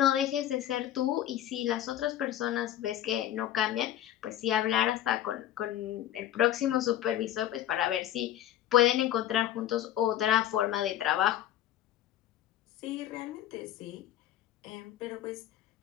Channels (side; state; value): right; quieter; 12.1 dB